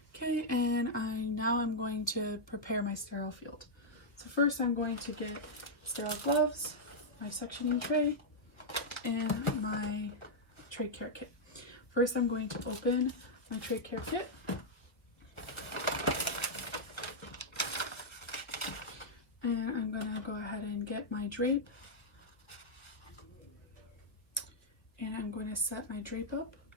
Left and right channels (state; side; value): late; right; 1.2 ms